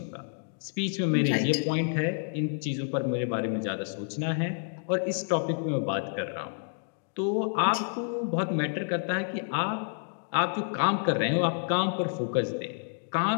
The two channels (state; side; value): silent; right; digital silence